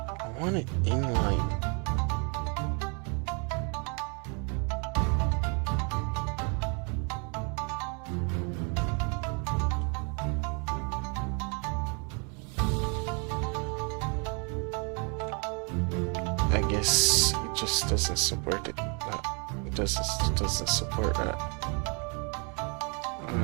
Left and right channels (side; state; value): left; quieter; 36.0 dB